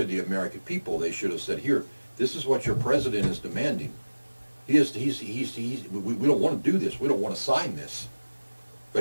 the American people. They should have said, "Here, this is what your president is demanding. We don't want to do this. We don't want to sign this,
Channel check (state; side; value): inverted; both; correlation -1.00